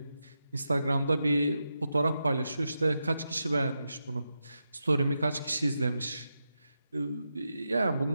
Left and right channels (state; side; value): inverted; both; correlation -0.87